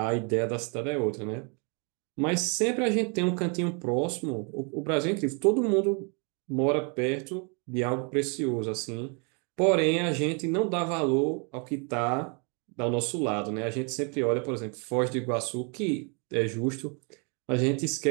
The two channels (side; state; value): left; quieter; 35.6 dB